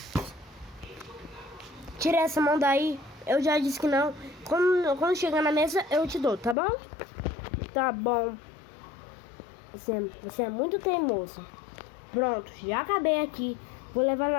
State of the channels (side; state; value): right; drops out; at 6.6 s